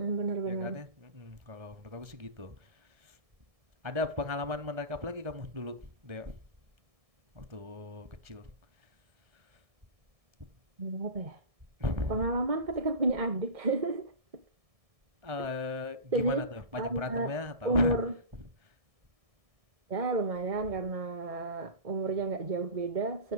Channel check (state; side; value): late; left; 1.7 ms